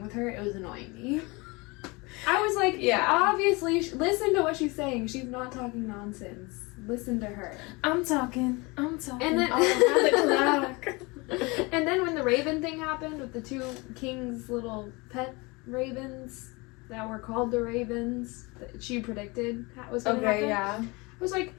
with her, it was annoying me. I was like, obviously, listen to what she's saying. She's not talking nonsense. Listen to her. I'm talking. And then, and then when the raven thing happened with the two kings' little pet ravens that were called the ravens, that she predicted was going to happen. Yeah. I was like,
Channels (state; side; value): quieter; right; 26.1 dB